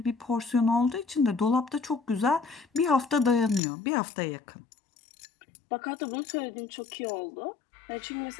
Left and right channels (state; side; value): drops out; right; at 3.6 s